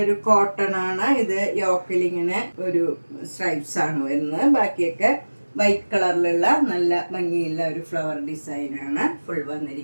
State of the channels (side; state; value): both; inverted; correlation -1.00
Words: കോട്ടൺ ആണ്. ഇത് യോക്കിൽ ഇങ്ങനെ ഒരു സ്ട്രൈപ്സ് ആണ് വരുന്നത്. ബാക്കിയൊക്കെ വൈറ്റ് കളറിലുള്ള നല്ല ഭംഗിയുള്ള ഒരു ഫ്ലവർ ഡിസൈൻ ആണ് ഫുൾ